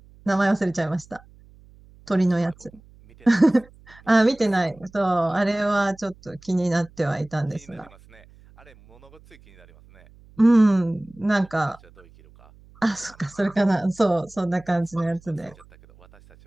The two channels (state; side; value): noise; right; hum, 26 dB below the sound